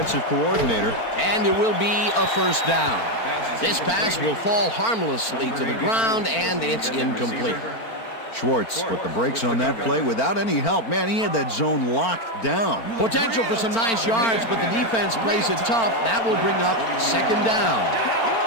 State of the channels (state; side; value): late; right; 4.4 ms